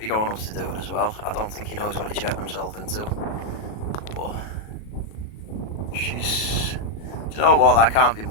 going up to do it as well. I don't think he knows what he's getting himself into. But she's, do you know what, that can't be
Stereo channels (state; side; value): late; right; 37 ms